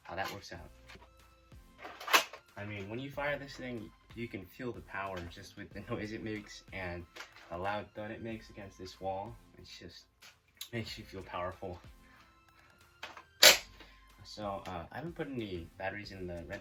how that works out. I mean, when you fire this thing, you can feel the power just with the noise it makes and the loud thud it makes against this wall. It just makes you feel powerful. So I haven't put any batteries in the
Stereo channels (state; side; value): identical; both; correlation 1.00